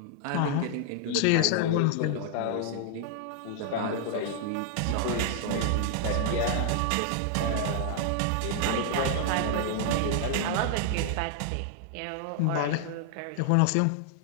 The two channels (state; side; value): different; both; correlation 0.00